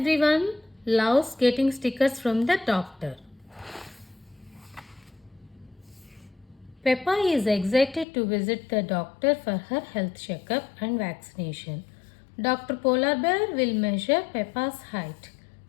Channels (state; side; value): drops out; right; at 8.1 s